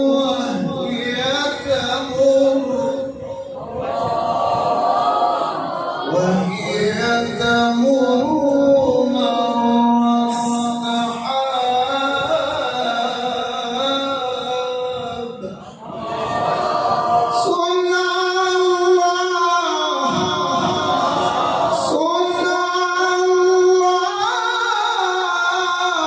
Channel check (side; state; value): both; identical; correlation 1.00